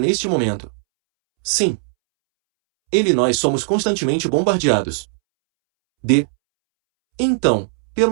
momento. Sim. Ele e nós somos constantemente bombardeados. Então,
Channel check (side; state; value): left; silent; 67 dB below the other